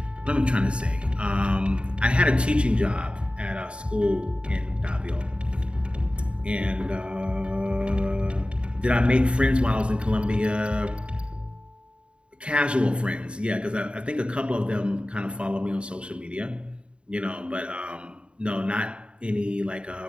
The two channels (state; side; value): late; left; 0.056 ms